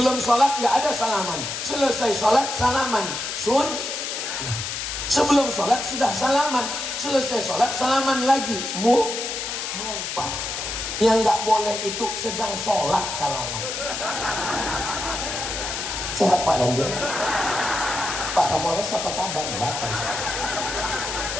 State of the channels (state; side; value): noise; left; hiss, 4 dB below the sound